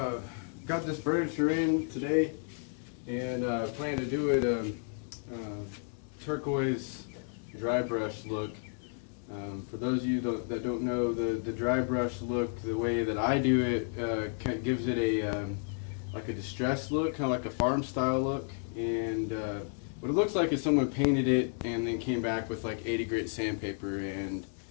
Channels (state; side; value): silent; right; 56 dB below the other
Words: got this furniture in today, and plan to do it turquoise dry brush look. For those of you that don't know, the dry brush look, the way that I do it, kind of gives it a like a distressed look, kind of like a farm style look. And what it looks like is someone painted it and then came back with like 80 grit sandpaper and